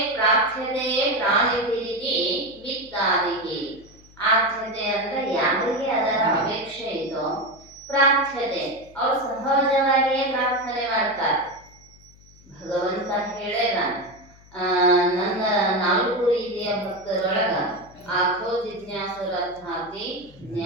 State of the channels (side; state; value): left; noise; hum, 25 dB below the sound